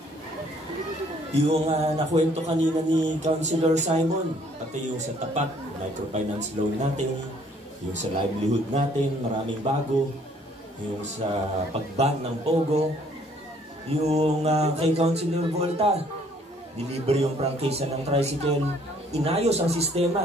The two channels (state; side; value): normal; both; correlation 0.62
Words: Yung nakwento kanina ni Councilor Simon, pati yung sa tapat, microfinance loan natin, yung sa livelihood natin, maraming bago, yung sa pag-ban ng Pogo, yung kay Councilor Volta, deliver yung prangkisa ng tricycle, inayos ang